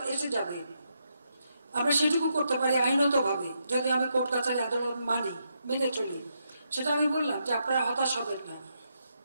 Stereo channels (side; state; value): both; inverted; correlation -0.80